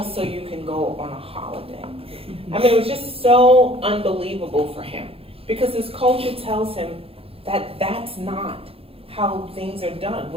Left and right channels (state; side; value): late; left; 0.27 ms